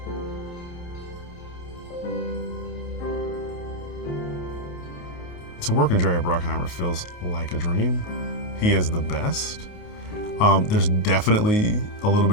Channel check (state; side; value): late; right; 28 ms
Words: To work with Jerry Bruckheimer feels like a dream. He is the best. There's definitely a little